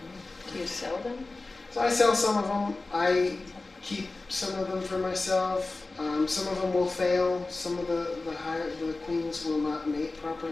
Do you sell them? So I sell some of them. I keep some of them for myself. Some of them will fail. Some of the queens will not mate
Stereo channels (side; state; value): right; quieter; 3.4 dB